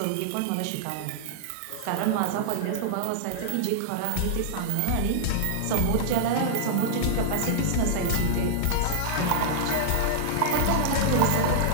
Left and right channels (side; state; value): both; different; correlation -0.01